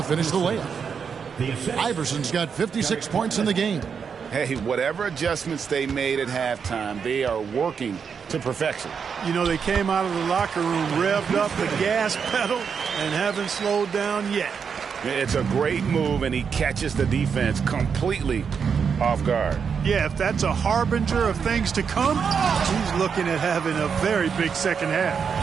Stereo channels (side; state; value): left; quieter; 6.5 dB